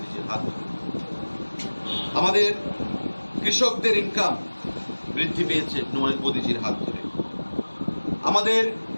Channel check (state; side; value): inverted; both; correlation -1.00